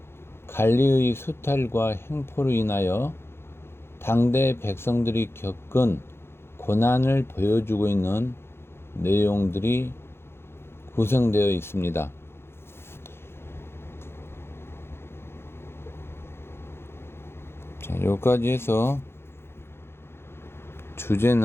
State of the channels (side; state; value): right; late; 0.12 ms